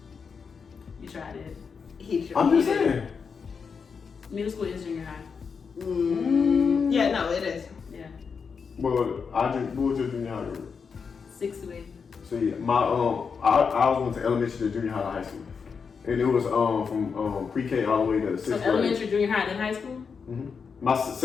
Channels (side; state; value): right; quieter; 5.8 dB